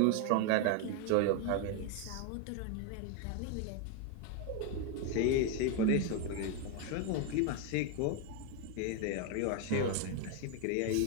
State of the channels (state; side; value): different; both; correlation 0.01